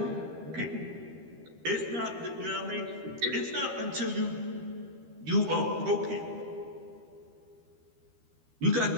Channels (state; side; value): late; left; 13 ms